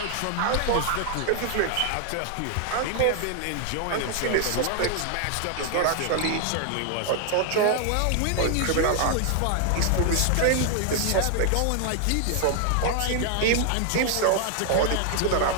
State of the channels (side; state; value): both; different; correlation 0.00